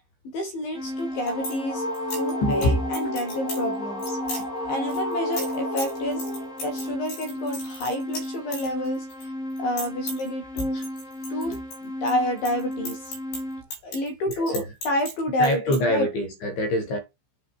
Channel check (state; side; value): late; right; 15 ms